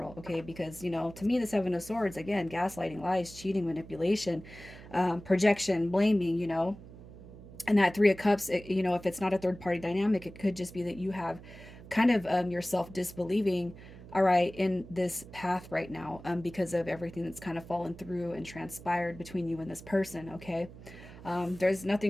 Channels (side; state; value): right; noise; hum, 17 dB below the sound